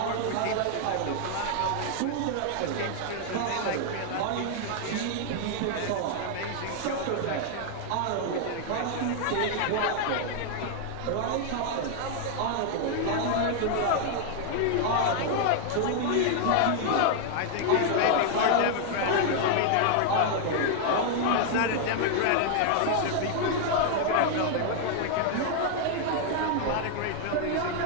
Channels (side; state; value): both; different; correlation 0.00